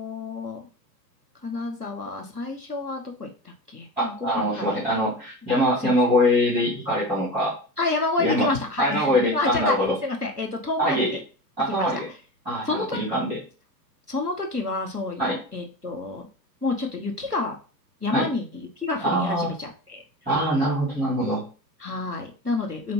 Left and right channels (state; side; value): late; left; 1.3 ms